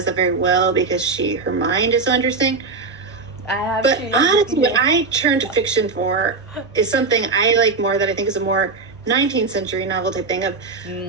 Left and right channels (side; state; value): left; quieter; 4.2 dB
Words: that very well because her mind is so interesting. But honestly, what I turn to fiction for is something I like more, that I think is a more 19th century novel type thing of